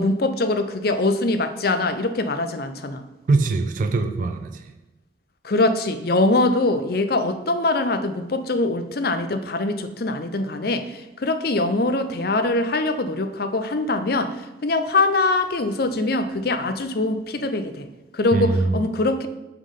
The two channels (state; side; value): normal; both; correlation 0.20